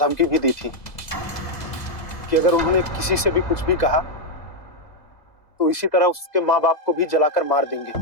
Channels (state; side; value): late; right; 2.0 ms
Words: भी दी थी कि अगर उन्होंने किसी से भी कुछ भी कहा तो इसी तरह उसके माँ बाप को भी जलाकर मार देंगे।